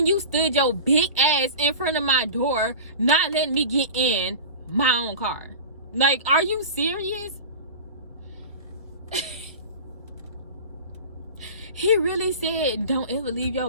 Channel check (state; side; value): inverted; both; correlation -0.33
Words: you stood your big ass in front of my door, not letting me get in my own car? Like, are you serious? He really said don't ever leave your